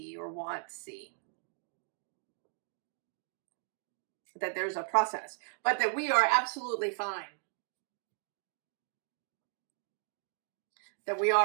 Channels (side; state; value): left; silent; 54 dB below the other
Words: or want to see. That there's a process, but that we are absolutely fine. That we